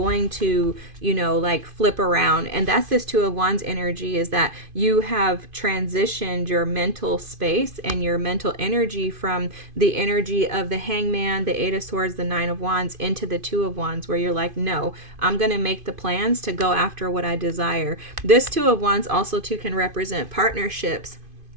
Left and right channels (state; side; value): late; left; 2.5 ms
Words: to, like flip around. And that's this Two of Wands energy, is that you have transitioned your mental space and your mental energy from the energy of the Hangman, the Eight of Swords, the Nine of Wands into the Two of Wands, where you're like, no, I'm going to make the plans to go after what I desire. This Two of Wands also too can represent partnerships.